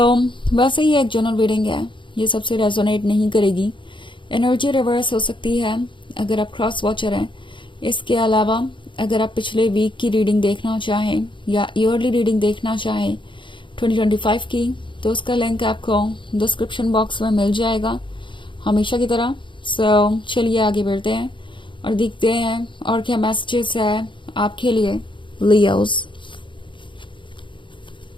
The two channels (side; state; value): right; late; 0.24 ms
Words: वैसे ही एक जनरल रीडिंग है, ये सबसे रेजोनेट नहीं करेगी। एनर्जी रिवर्स हो सकती है अगर आप क्रॉस वॉचर हैं। इसके अलावा अगर आप पिछले वीक की रीडिंग देखना चाहें या ईयरली रीडिंग देखना चाहें 2025 की, तो उसका लिंक आपको डिस्क्रिप्शन बॉक्स में मिल जाएगा हमेशा की तरह। सो चलिए आगे बढ़ते हैं और देखते हैं और क्या मैसेजेस है आपके लिए Leos.